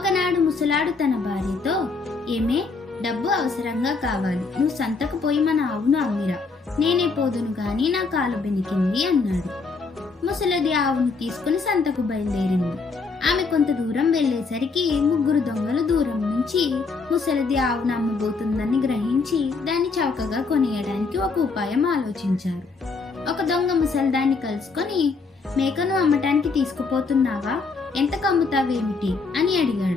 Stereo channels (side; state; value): right; quieter; 4.3 dB